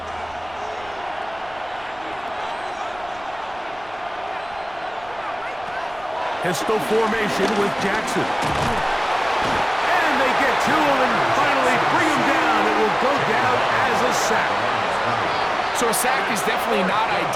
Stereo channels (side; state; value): right; noise; rumble, 23 dB below the sound